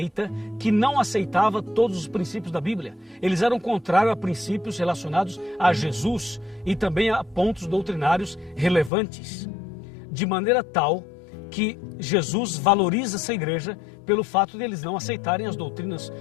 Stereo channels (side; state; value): right; drops out; at 8.9 s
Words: que não aceitava todos os princípios da Bíblia. Eles eram contrários a princípios relacionados a Jesus e também a pontos doutrinários relevantes. De maneira tal que Jesus valoriza essa igreja pelo fato de eles não aceitarem as doutrinas